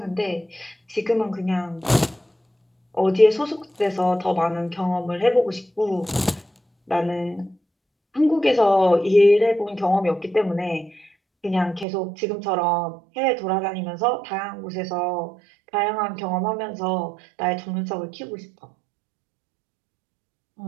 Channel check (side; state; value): left; drops out; at 11.9 s